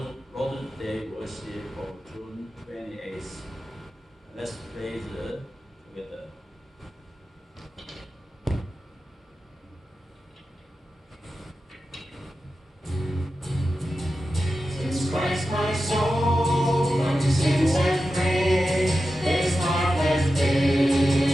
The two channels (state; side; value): normal; both; correlation 0.92